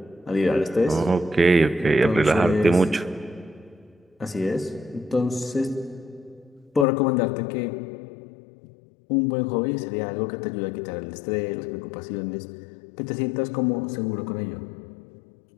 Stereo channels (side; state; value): right; drops out; at 6.9 s